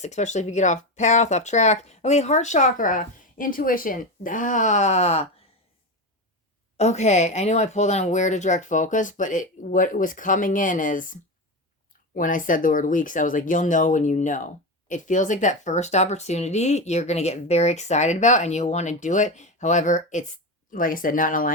especially if you get off path, off track. Okay, heart chakra, intuition. Okay, I know I pulled on where to direct focus, but what was coming in is when I said the word weeks, I was like, you'll know when you know. It feels like that first opportunity you're going to get very excited about and you'll want to do it. However, it's like I said, not in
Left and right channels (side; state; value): both; normal; correlation 0.18